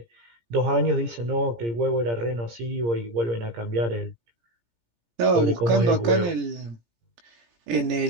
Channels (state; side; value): late; left; 17 ms